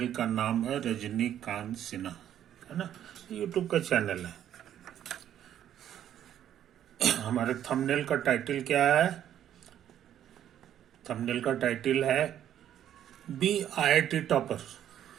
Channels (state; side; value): quieter; left; 10.7 dB